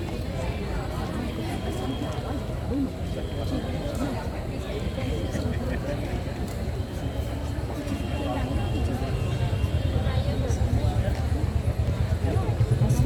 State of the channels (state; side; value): identical; both; correlation 1.00